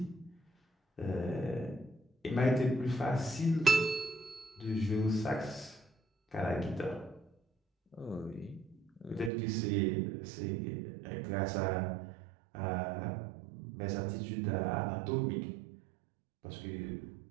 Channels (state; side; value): drops out; left; at 9.3 s